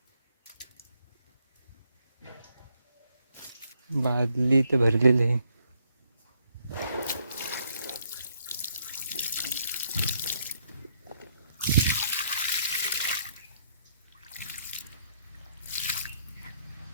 बादली तर भरलेली आहे.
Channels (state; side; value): inverted; both; correlation -0.72